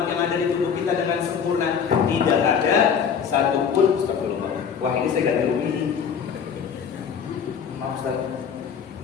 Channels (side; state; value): right; quieter; 7.1 dB